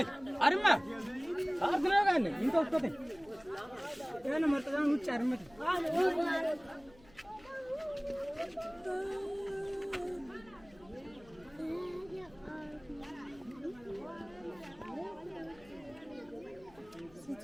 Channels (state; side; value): noise; left; hum, 25 dB below the sound